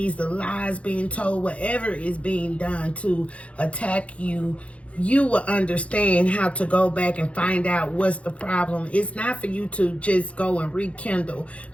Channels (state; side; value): late; right; 0.063 ms